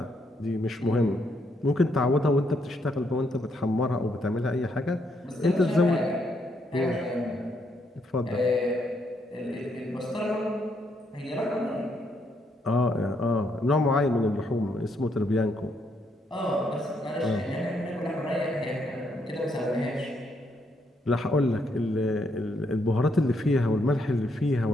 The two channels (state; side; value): normal; both; correlation 0.75